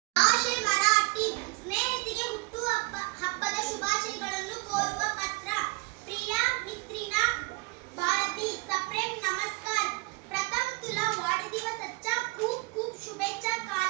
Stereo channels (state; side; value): quieter; left; 27.7 dB